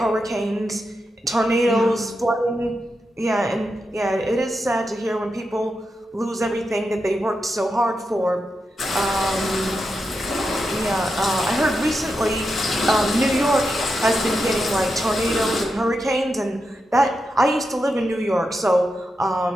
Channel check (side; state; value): both; normal; correlation 0.87